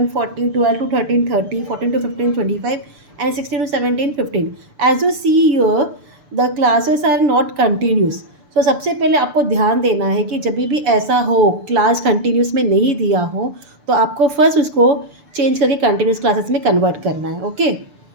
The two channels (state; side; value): late; left; 6.8 ms